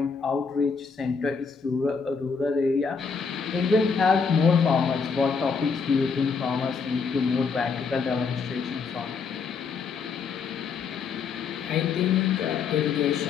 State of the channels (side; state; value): right; quieter; 5.4 dB